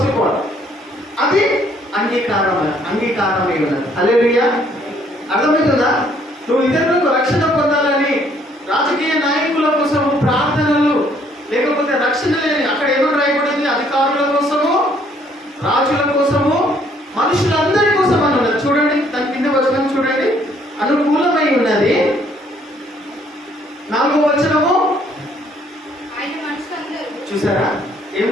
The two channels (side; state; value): both; normal; correlation 0.65